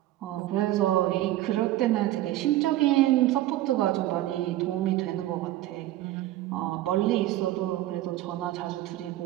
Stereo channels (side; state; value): left; quieter; 15.0 dB